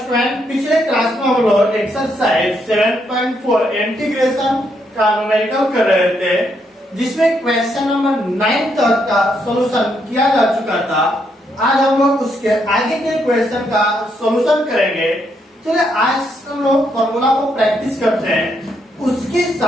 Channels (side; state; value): both; normal; correlation 0.76